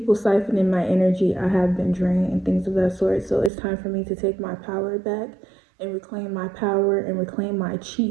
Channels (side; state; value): left; drops out; at 3.5 s